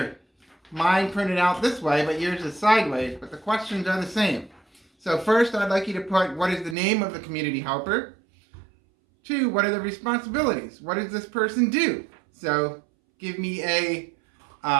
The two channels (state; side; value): drops out; left; at 6.8 s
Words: Mine printed out this way, but yours is sideways, but the questions are the same. So first, I'd like you to put what is the name of the community helper. 2, what are the responsibilities? What does this person do? So give me a